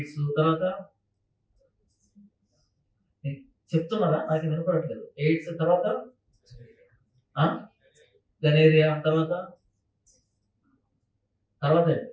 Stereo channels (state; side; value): identical; both; correlation 1.00